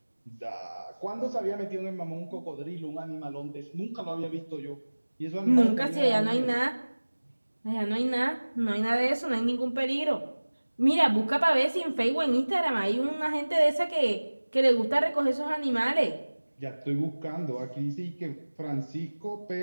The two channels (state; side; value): inverted; both; correlation -1.00